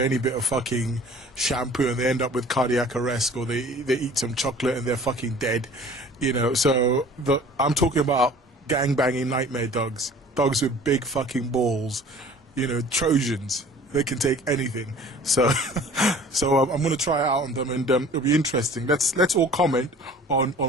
bit of fucking shampoo and they end up with cardiac arrest, or they eat some chocolate and they're fucking dead, so I'm talking about gangbanging nightmare dogs with big fucking balls, Trojans. They can take anything. So I'm going to try it out on them, and it'll be interesting. Let's all comment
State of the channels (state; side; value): normal; both; correlation 0.48